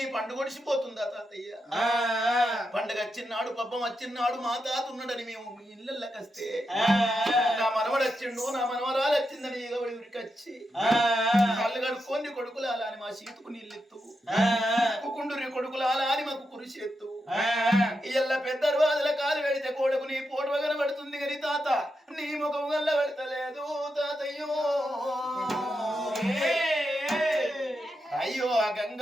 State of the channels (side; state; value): both; normal; correlation 0.86